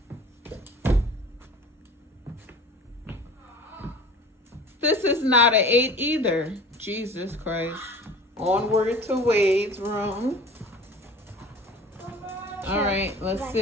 This is not an 8 either. Jesus Christ. Onward to Wade's room. All right, let's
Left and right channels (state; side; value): normal; both; correlation 0.41